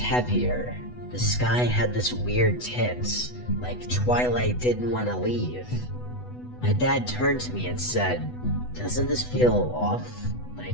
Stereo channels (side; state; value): right; late; 8.1 ms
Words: The sky had this weird tint, like twilight didn't want to leave. My dad turned to me and said, "Doesn't this feel off?